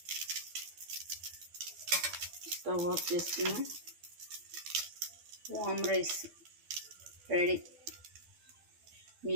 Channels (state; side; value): late; left; 12 ms